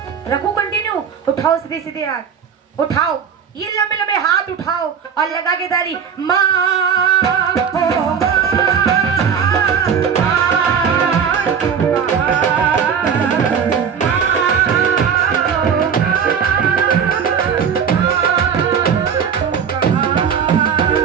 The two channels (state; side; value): quieter; left; 7.3 dB